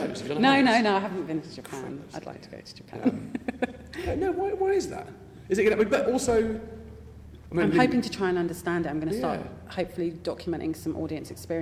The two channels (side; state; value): both; identical; correlation 1.00